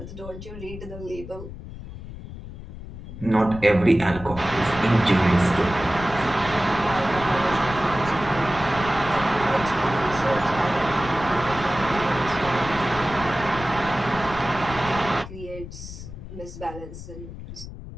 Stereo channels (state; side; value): noise; left; rumble, 12 dB below the sound